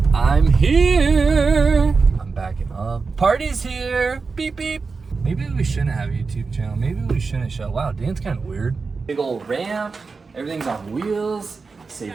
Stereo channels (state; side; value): quieter; left; 4.5 dB